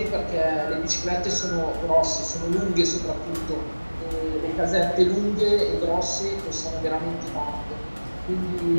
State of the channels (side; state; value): both; inverted; correlation -1.00